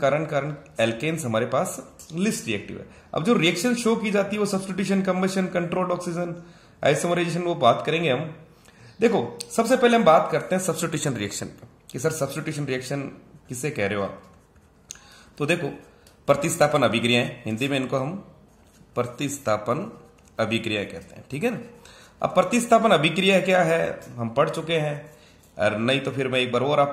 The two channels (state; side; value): identical; both; correlation 1.00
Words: एल्केन्स हमारे पास लिस्ट रिएक्टिव है। अब जो रिएक्शन शो की जाती है वो substitution, combustion, controlled oxygen, isomerisation, वो बात करेंगे हम। देखो सबसे पहले हम बात करते हैं सब्स्टिट्यूशन रिएक्शन पे कि सर सब्स्टिट्यूशन रिएक्शन किसे कह रहे हो आप। तो देखो प्रतिस्थापन अभिक्रियाएं, हिंदी में इनको हम प्रतिस्थापन अभिक्रिया कहते हैं। ठीक है ना। अब प्रतिस्थापन अभिक्रिया क्या है हम पढ़ चुके हैं, और नहीं तो फिर मैं एक बार और